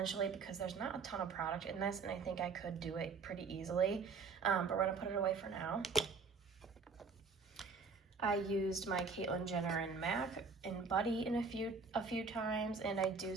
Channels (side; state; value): left; quieter; 4.8 dB